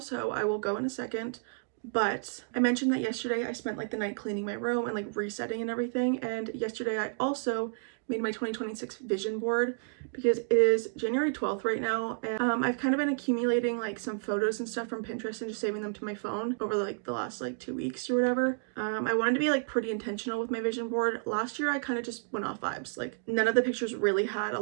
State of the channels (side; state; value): left; silent; digital silence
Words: I will go in a second. But I mentioned that yesterday I spent like the night cleaning my room and like resetting and everything. And yesterday I also made my 2026 vision board because it is January 12th right now, and I've kind of been accumulating like some photos and stuff from Pinterest and just saving them to my phone over like the last like 2 weeks or whatever. I wanted to be like pretty intentional with my vision board. Last year I kind of just went off vibes. Like none of the pictures really had a